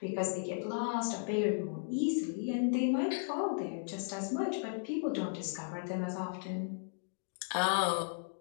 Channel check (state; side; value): silent; right; digital silence